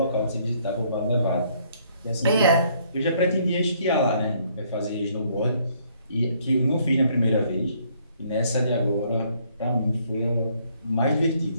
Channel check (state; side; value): inverted; both; correlation -0.66